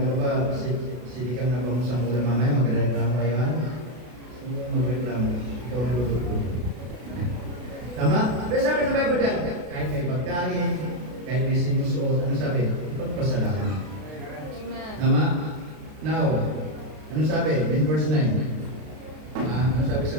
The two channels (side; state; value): left; late; 32 ms